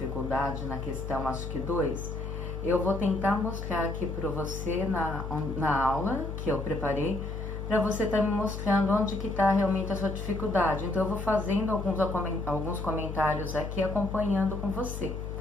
na questão, acho que 2. Eu vou tentar mostrar aqui para você na aula que eu preparei, para você estar me mostrando onde que está realmente a sua dificuldade. Então, eu vou fazendo alguns comentários aqui, acompanhando com você,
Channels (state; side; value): noise; left; hum, 6 dB below the sound